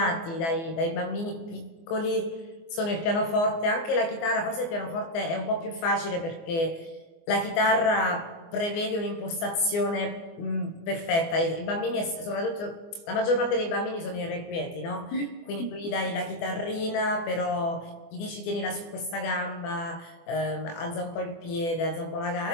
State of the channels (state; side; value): late; right; 24 ms